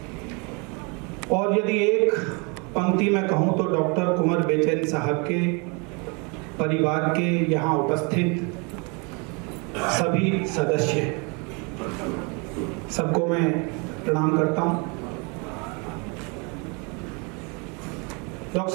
और यदि एक पंक्ति में कहूं तो डॉक्टर कुंवर बेचैन साहब के परिवार के यहाँ उपस्थित सभी सदस्य, सबको मैं प्रणाम करता हूं। डॉक्टर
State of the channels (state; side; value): quieter; left; 31.8 dB